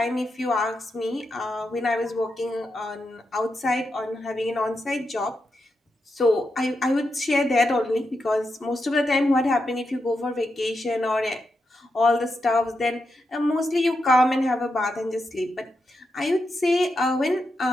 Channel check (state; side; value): normal; both; correlation 0.86